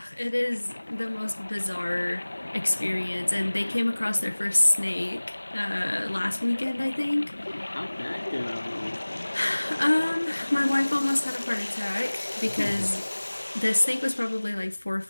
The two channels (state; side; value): inverted; both; correlation -1.00